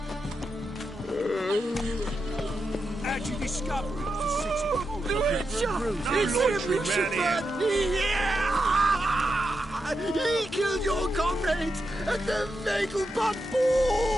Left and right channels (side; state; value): both; normal; correlation 0.87